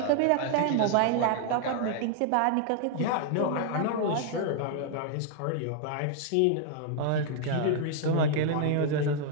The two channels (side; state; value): both; different; correlation 0.00